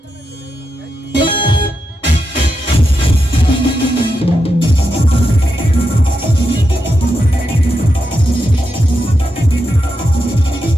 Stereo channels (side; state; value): both; normal; correlation 0.86